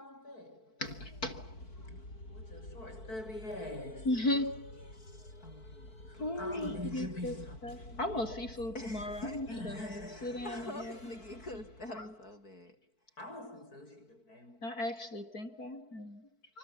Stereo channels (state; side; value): late; right; 4.5 ms